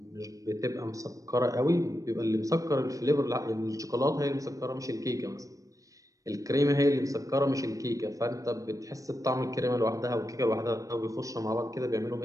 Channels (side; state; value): left; late; 0.16 ms